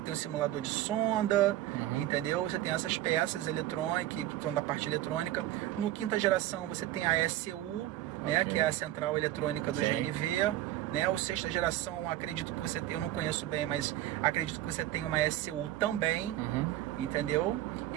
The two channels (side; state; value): left; quieter; 14.3 dB